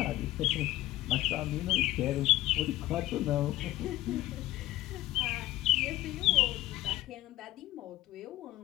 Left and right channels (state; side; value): quieter; right; 16.0 dB